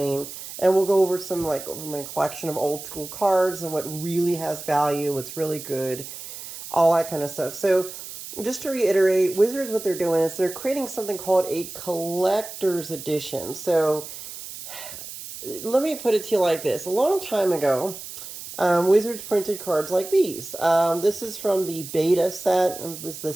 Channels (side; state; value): right; noise; hiss, 11 dB below the sound